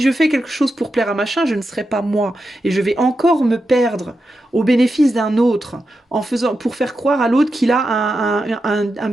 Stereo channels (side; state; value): both; normal; correlation 0.88